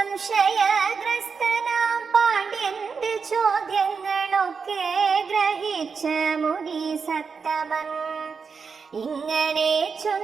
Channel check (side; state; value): left; quieter; 5.5 dB